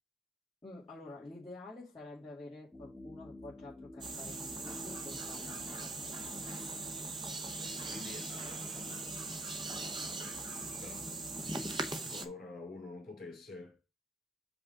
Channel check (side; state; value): both; normal; correlation 0.60